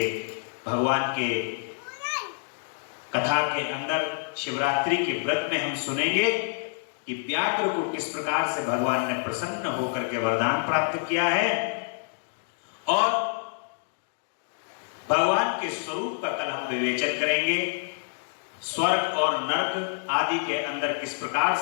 भगवान के कथा के अंदर शिवरात्रि के व्रत में हम सुनेंगे कि व्याघ्र को किस प्रकार से भगवान ने प्रसन्न होकर के वरदान प्राप्त किया है और भगवान के स्वरूप का कल हम विवेचन करेंगे। स्वर्ग और नरक आदि के अंदर किस प्रकार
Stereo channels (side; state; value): right; silent; digital silence